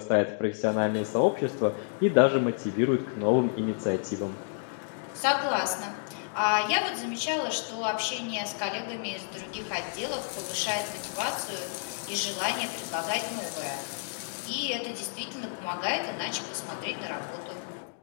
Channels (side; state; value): right; silent; digital silence